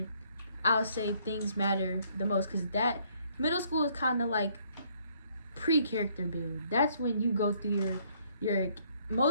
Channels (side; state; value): both; inverted; correlation -0.66